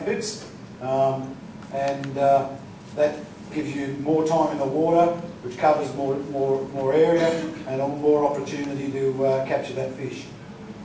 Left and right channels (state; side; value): identical; both; correlation 1.00